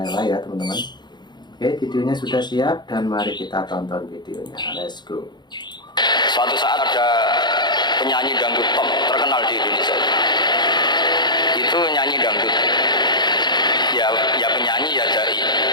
ya teman-teman. Oke, videonya sudah siap dan mari kita tonton videonya. Let's go. Suatu saat ada penyanyi dangdut top terkenal di Indonesia. Itu nyanyi dangdut. Ya penyanyi ya dai.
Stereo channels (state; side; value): late; right; 0.21 ms